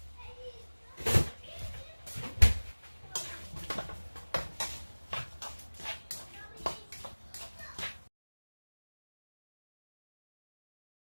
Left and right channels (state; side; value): inverted; both; correlation -1.00